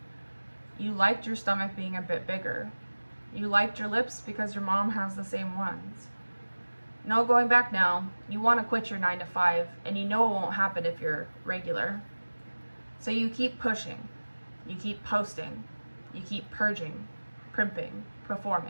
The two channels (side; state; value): both; inverted; correlation -1.00